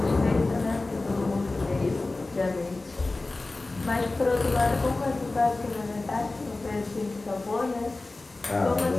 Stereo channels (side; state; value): right; quieter; 3.2 dB